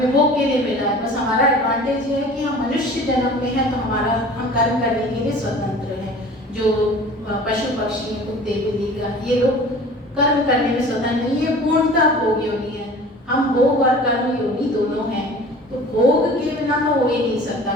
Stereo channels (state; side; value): normal; both; correlation 0.43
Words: भोग के लिए मिला है। बस हमारा एडवांटेज ये है कि हम मनुष्य जन्म में हैं तो हम कर्म करने के लिए स्वतंत्र हैं। जो पशु पक्षी हैं, कुत्ते बिल्ली का, ये लोग कर्म करने में स्वतंत्र नहीं है, पूर्णतः भोग योनि है। हम भोग और कर्म योनि दोनों हैं। तो भोग के बिना तो हो ही नहीं सकता,